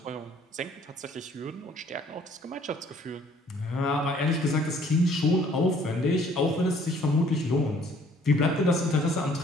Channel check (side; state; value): both; normal; correlation 0.59